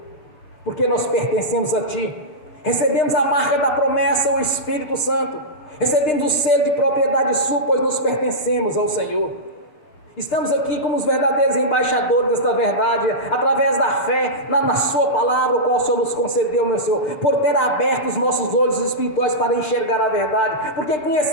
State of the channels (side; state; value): right; late; 6.5 ms